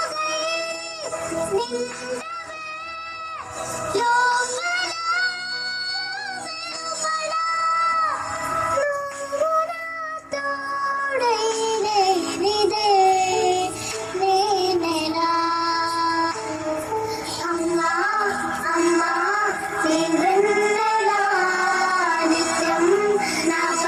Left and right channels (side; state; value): both; identical; correlation 1.00